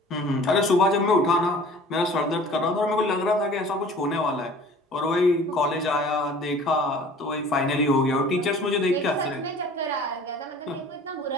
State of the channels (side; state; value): both; normal; correlation 0.47